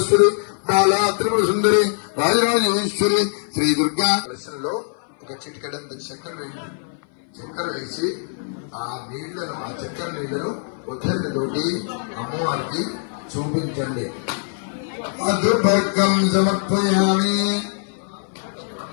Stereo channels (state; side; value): silent; right; 59 dB below the other